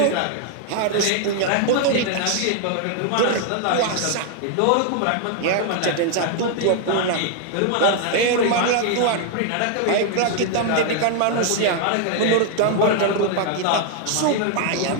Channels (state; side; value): different; both; correlation 0.00